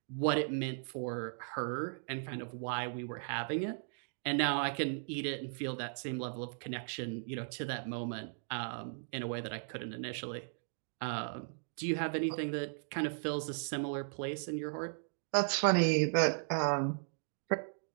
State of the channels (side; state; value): left; silent; digital silence